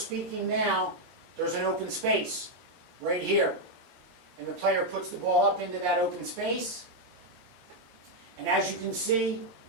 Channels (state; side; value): late; left; 23 ms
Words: now, there's an open space right here. And the player puts the ball up into that open space, and as you can see,